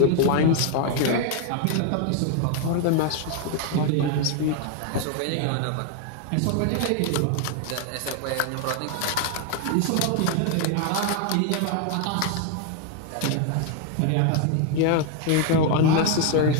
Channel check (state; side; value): different; both; correlation 0.01